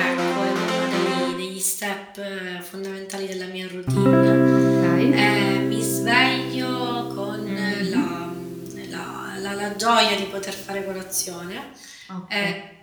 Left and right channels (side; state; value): both; identical; correlation 1.00